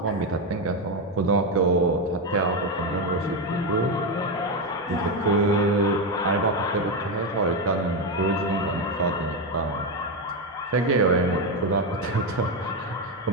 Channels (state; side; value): normal; both; correlation 0.09